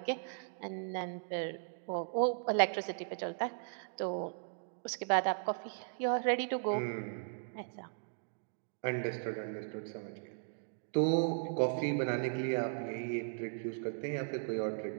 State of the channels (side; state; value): left; silent; digital silence